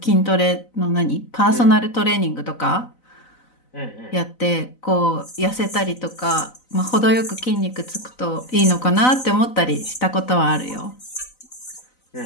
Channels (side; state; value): right; late; 4.0 ms